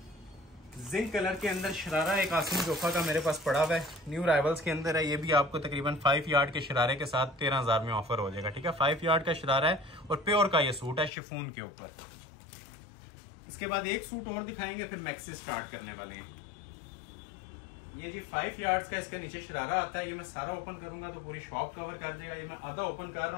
जिंक कलर के अंदर शरारा एक आसिम जोफा का मेरे पास पड़ा हुआ है, न्यू राइवल्स के अंदर है। ये भी आपको तकरीबन 5 यार्ड के शरारे के साथ 13,000 में ऑफर हो जाएगा, ठीक है। 5 यार्ड का शरारा है और प्योर का ये सूट है शिफॉन के ऊपर। इसके बाद एक सूट और दिखाएंगे, फिर मैक्सी स्टार्ट करने वाले हैं। ये जी 5 यार्ड्स का इसके नीचे शरारा आता है। ये मैं सारा ओपन करूंगा तो पूरी शॉप कवर कर देगा। ये मैं आधा ओपन कर रहा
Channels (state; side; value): drops out; right; at 11.1 s